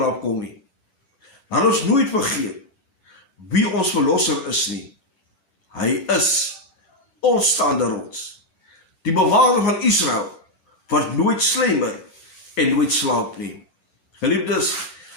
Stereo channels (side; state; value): right; late; 11 ms